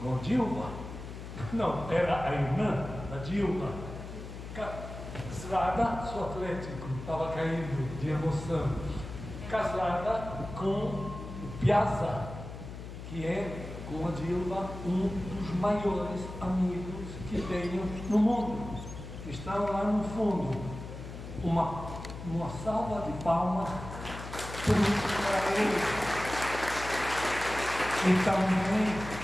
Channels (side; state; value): left; noise; hum, 10 dB below the sound